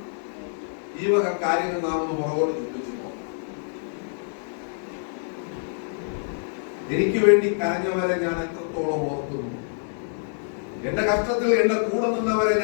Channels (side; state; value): right; silent; digital silence